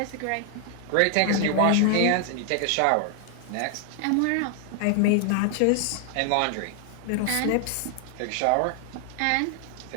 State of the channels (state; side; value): different; both; correlation 0.00